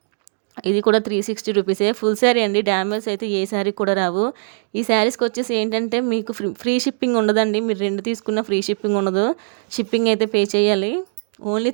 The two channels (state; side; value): silent; left; digital silence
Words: ఇది కూడా 360 రూపీసే. ఫుల్ శారీ అండి, డ్యామేజ్ అయితే ఏ శారీ కూడా రావు. ఈ శారీస్కి వచ్చేసి ఏంటంటే మీకు ఫ్రీ షిప్పింగ్ ఉండదండి. మీరు 2 తీసుకున్న ఫ్రీ షిప్పింగ్ ఉండదు, షిప్పింగ్ అయితే పే చేయాలి. ఓన్లీ